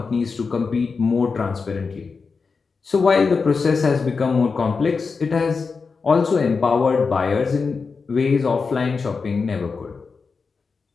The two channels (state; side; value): quieter; right; 4.9 dB